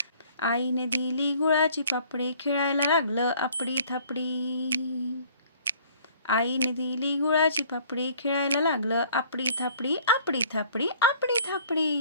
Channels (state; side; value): inverted; both; correlation -0.55